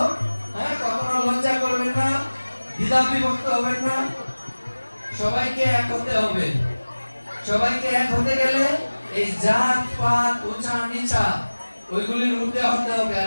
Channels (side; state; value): both; inverted; correlation -1.00